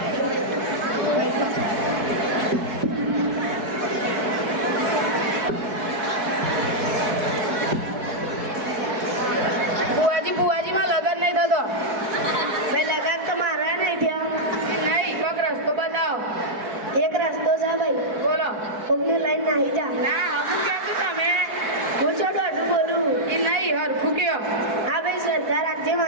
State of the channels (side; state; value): left; late; 4.6 ms